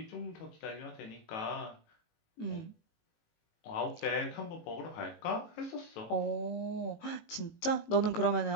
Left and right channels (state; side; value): late; right; 18 ms